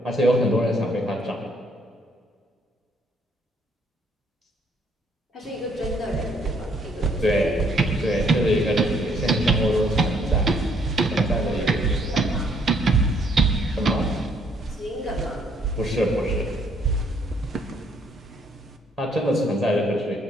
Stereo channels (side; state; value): both; normal; correlation 0.67